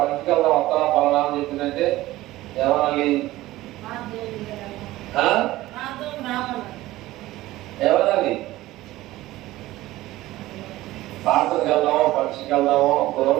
వస్తా పలానా అని చెప్పిందంటే ఏమనాలి? ఏమనాలి? పాత్రకి వెళ్దామో, పక్షికి వెళ్దామో,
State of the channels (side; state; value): left; quieter; 16.9 dB